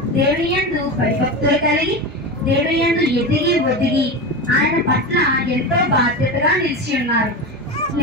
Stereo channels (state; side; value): normal; both; correlation 0.21